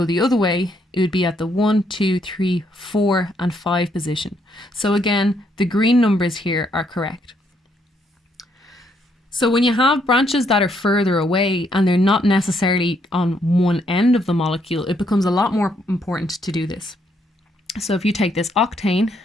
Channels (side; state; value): both; normal; correlation 0.73